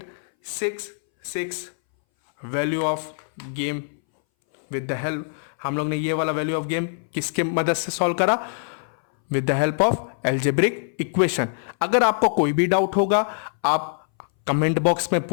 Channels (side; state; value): right; silent; 61 dB below the other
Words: value of game. With the help, हम लोग ने ये वाला वैल्यू ऑफ गेम किसके मदद से सॉल्व करा, with the help of algebraic equation. अगर आपको कोई भी डाउट होगा आप कमेंट बॉक्स में